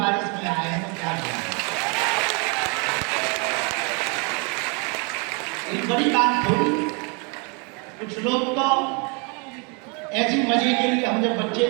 में आए हैं तो क्या करें? एक बड़ी बात थोड़ी। कुछ लोग तो ऐसे मजे के लिए, हम जब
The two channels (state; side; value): quieter; left; 33.6 dB